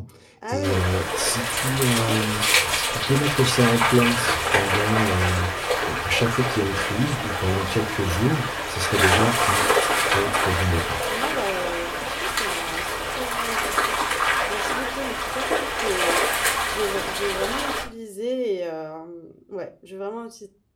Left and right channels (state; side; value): identical; both; correlation 1.00